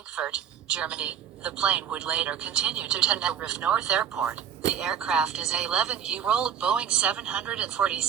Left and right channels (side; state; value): left; quieter; 8.5 dB